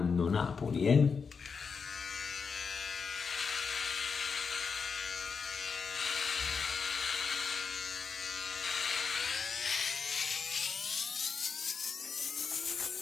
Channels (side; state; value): right; quieter; 5.6 dB